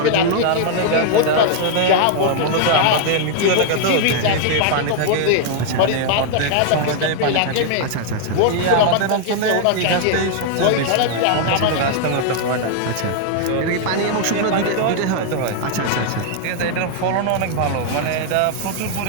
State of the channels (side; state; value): both; different; correlation 0.00